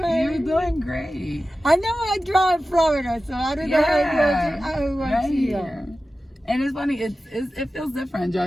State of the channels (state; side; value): normal; both; correlation 0.94